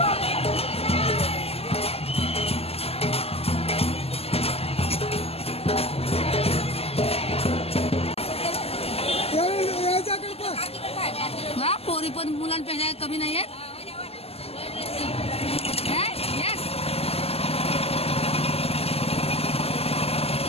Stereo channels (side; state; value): right; late; 0.29 ms